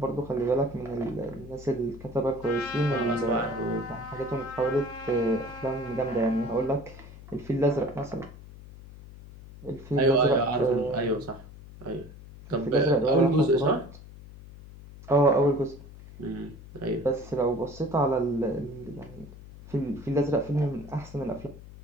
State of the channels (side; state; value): left; noise; hum, 17 dB below the sound